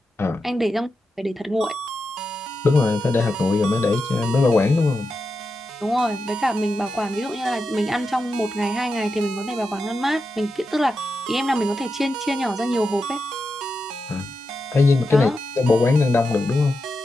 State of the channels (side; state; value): both; normal; correlation 0.88